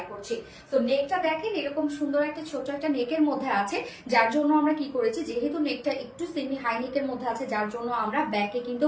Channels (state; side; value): identical; both; correlation 1.00